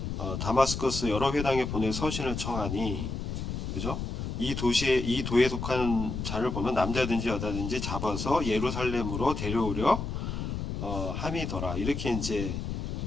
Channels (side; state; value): left; noise; rumble, 4 dB below the sound